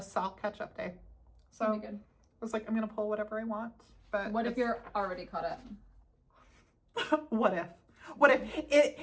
catch-up day. So That'd be good. I was like, I'm gonna pull whatever I want. But what if you're already caught up? What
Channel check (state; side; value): identical; both; correlation 1.00